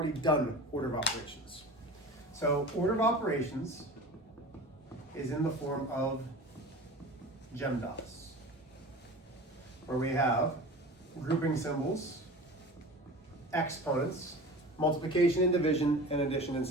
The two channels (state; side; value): normal; both; correlation 0.36